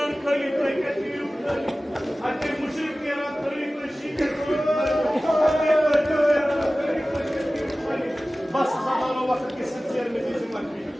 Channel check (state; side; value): normal; both; correlation 0.97